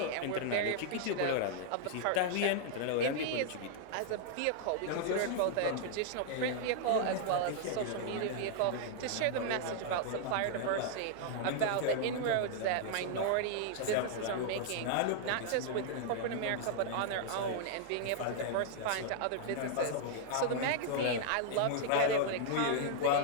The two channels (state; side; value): different; both; correlation -0.01